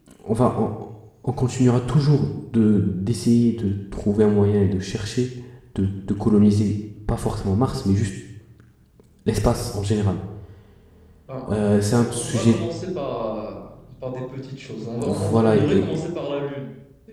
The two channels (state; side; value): identical; both; correlation 1.00